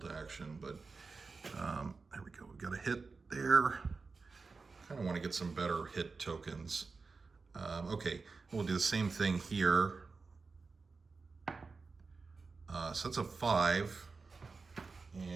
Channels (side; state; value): left; quieter; 4.3 dB